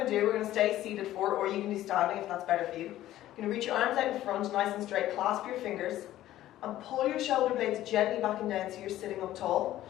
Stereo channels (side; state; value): right; quieter; 14.0 dB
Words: to do, we're going to stay seated forward, or you can do standing if that's better for you. You're going to reach your arms out in front, nice and straight, clasp your fingers, and pull your shoulder blades gently back and down so you're sitting up tall.